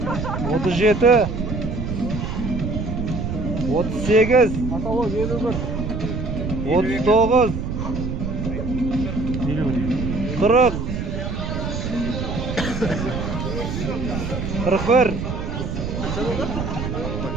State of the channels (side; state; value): right; noise; rumble, 4 dB below the sound